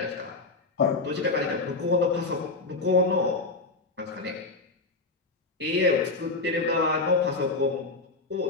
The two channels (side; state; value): right; quieter; 3.5 dB